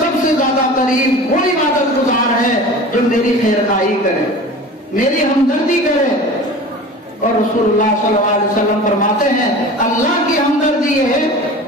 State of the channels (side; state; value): both; normal; correlation 0.37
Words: سے زیادہ قریب وہ عبادت گزار ہے جو میری خیر خواہی کرے، میری ہمدردی کرے۔ اور رسول اللہ صلی اللہ علیہ وسلم فرماتے ہیں اللہ کی ہمدردی یہ ہے،